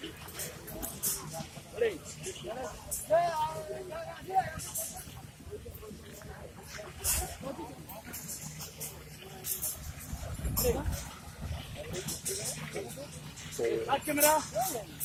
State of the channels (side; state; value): both; identical; correlation 1.00